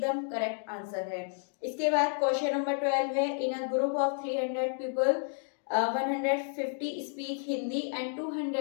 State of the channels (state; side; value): silent; right; 57 dB below the other